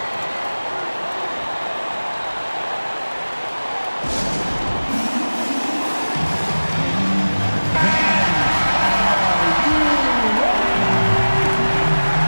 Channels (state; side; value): inverted; both; correlation -1.00